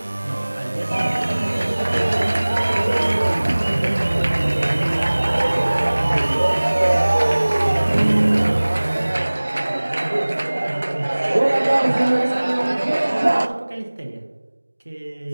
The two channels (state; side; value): inverted; both; correlation -1.00